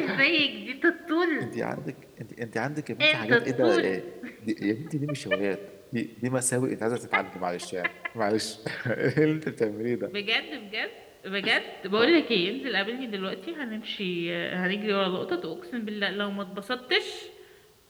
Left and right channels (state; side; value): identical; both; correlation 1.00